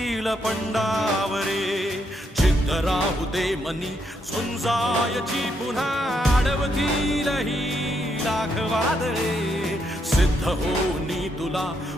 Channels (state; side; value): normal; both; correlation 0.77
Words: पंडावरे जिद्द राहू दे मनी झुंजायची पुन्हा अडवतील ही लाख वादळे सिद्ध होनी तुला